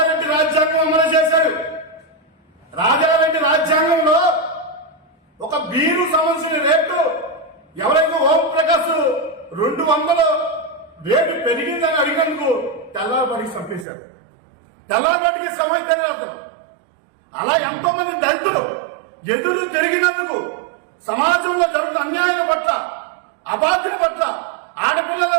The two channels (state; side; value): drops out; left; at 13.9 s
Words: రాజ్యాంగం అమలు చేశాడు. రాజారెడ్డి రాజ్యాంగంలో ఒక బీరు సంబంధించిన రేటు ఎవరైతే ఓం ప్రకాశ్ 200 రేటు పెరిగిందని అడిగినందుకు తెల్లవారికి చంపేశాడు. తెల్లవారికి సమస్య తెలియదు. అలా ఎంతో మంది దళితులు ఎదురు తిరిగినందుకు, సమాజంలో జరుగుతున్న అన్యాయం పట్ల, అబాధ్యం పట్ల, ఆడపిల్లల